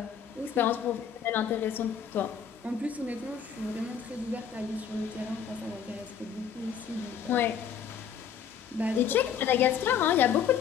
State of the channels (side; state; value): right; quieter; 7.8 dB